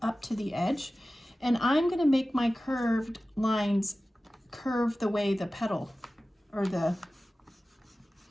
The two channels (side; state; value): both; normal; correlation 0.96